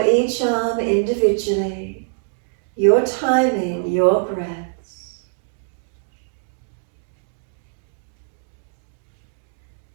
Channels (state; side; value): silent; left; digital silence